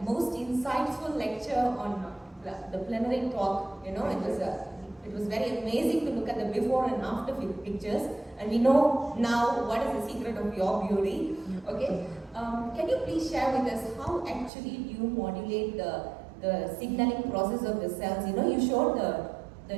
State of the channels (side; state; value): left; drops out; at 14.5 s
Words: most insightful lecture on the plenary talk. It was very amazing to look at the before and after pictures, and we know now what is the secret of your beauty. Okay, can you please share with us how actually you modulate the signaling process of the cells? You showed the